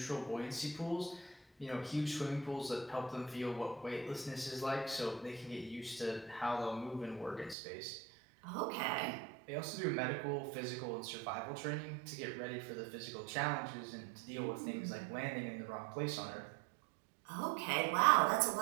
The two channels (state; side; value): drops out; left; at 7.6 s